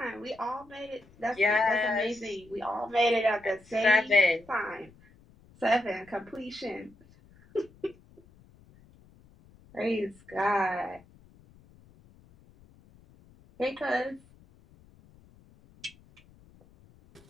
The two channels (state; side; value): noise; left; rumble, 27 dB below the sound